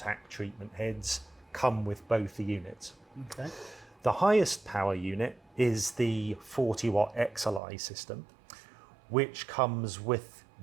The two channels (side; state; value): left; drops out; at 7.6 s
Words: treatment heads come with both the units. Okay. The highest power unit is the 40-watt XLI system, which comes with